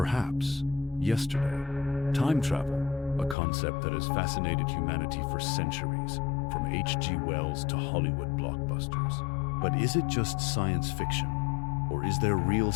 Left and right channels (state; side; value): drops out; right; at 3.4 s